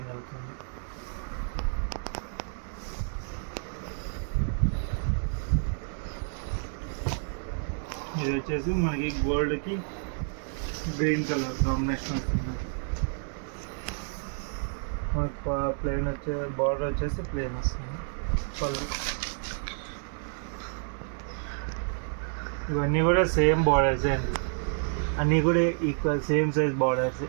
అవుతుంది. ఇది వచ్చేసి మనకి గోల్డ్కి గ్రీన్ కలర్ కాంబినేషన్ వస్తుంది. మనకి ప్లెయిన్ బార్డర్ వచ్చేసి ప్లెయిన్ వస్తుంది. పళ్ళు ఇవన్నీ కూడా సేమ్ బార్డర్స్ అండి. అన్నీ కూడా ఈక్వల్ సేమ్ సైజ్ బార్డర్స్.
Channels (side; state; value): left; silent; 56 dB below the other